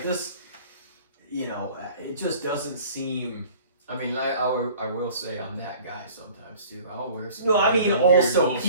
this, you know, it just doesn't seem... I mean, I will say I'm that guy sometimes too. I'll wear some. No, I mean, weird also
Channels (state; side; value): inverted; both; correlation -0.49